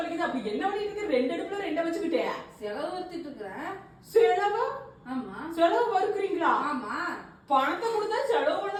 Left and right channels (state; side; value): identical; both; correlation 1.00